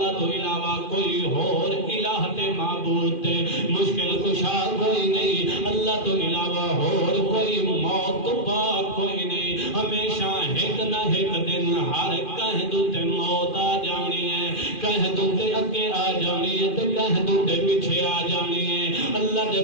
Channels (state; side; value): late; right; 2.4 ms